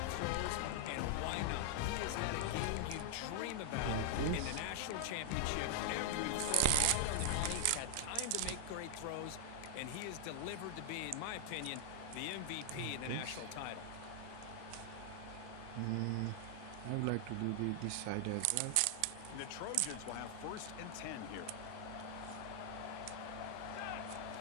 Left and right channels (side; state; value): both; different; correlation 0.00